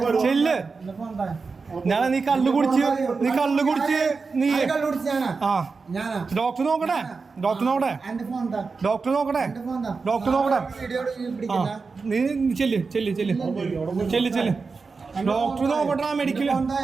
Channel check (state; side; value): quieter; left; 4.5 dB